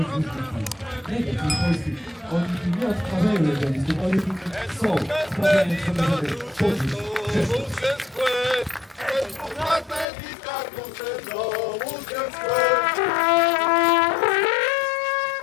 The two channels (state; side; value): drops out; right; at 10.1 s